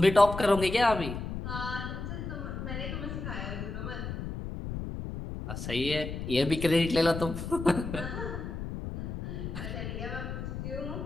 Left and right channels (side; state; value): left; noise; rumble, 6 dB below the sound